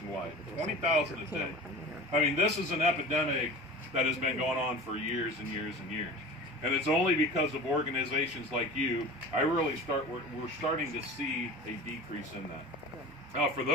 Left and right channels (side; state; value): both; normal; correlation 0.35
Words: 20,000 a day. I mean, this is an epidemic that has been going on for years and years and years. And it's only because of organizations like you, we're starting to see a decrease in that. Now, for